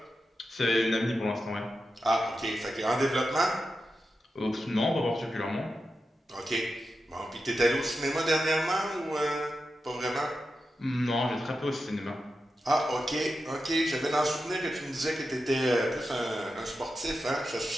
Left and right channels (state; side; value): normal; both; correlation 0.90